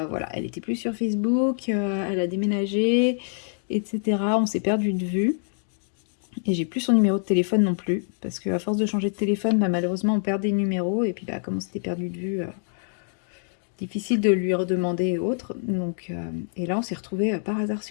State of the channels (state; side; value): silent; right; digital silence